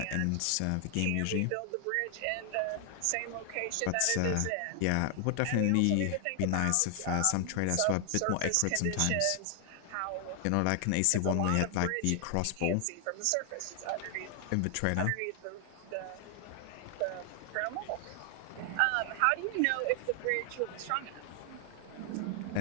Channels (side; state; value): both; different; correlation 0.00